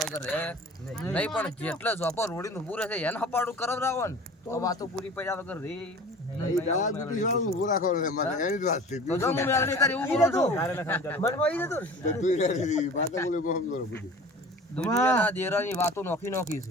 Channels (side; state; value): both; normal; correlation 0.41